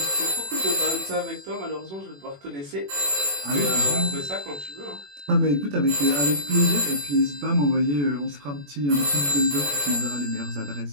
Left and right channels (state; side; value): late; left; 21 ms